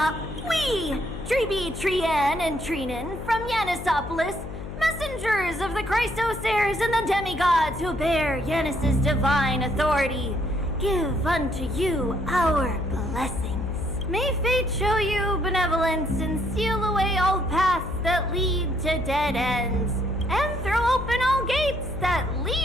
We, Treeby, Trianne, and Treenan from Yanisopolis, messengers of the Chrysosaurs and the demigods who bear Yanis's divine authority, give unto you our blessings. May fate show you benevolence and seal away all paths that lead to dead ends, and throw open all gates that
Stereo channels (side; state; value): left; noise; hum, 10 dB below the sound